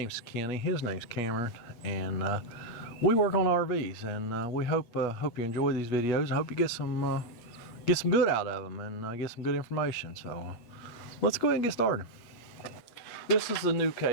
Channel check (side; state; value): right; late; 8.4 ms